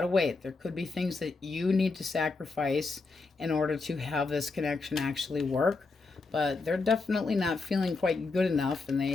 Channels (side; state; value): right; quieter; 3.9 dB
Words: to wait. There could be things that you need to sacrifice in order to have this connection actually work. But they're definitely not feeling quite good enough, and